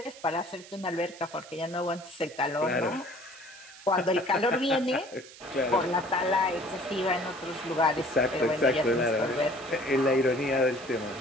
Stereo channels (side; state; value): right; noise; hiss, 19 dB below the sound